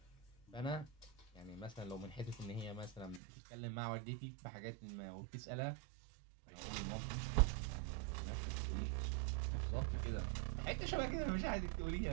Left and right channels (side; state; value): left; drops out; at 3.2 s